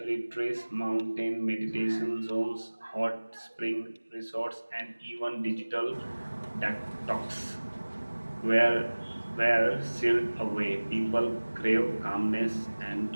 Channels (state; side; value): inverted; both; correlation -1.00